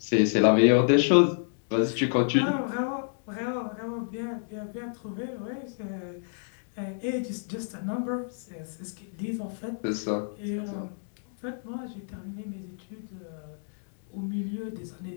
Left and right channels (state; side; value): silent; right; digital silence